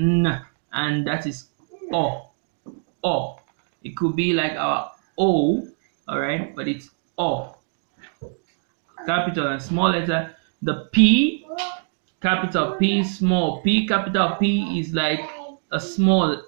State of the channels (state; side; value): silent; left; 63 dB below the other